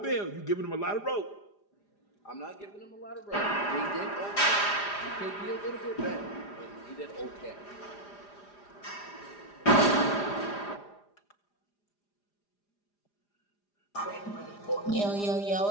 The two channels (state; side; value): late; right; 4.9 ms